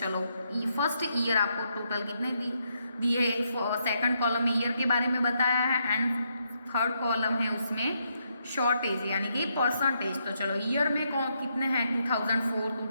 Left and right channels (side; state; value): both; inverted; correlation -0.78